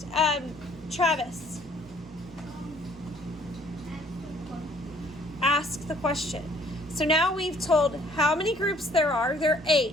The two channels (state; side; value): normal; both; correlation 0.60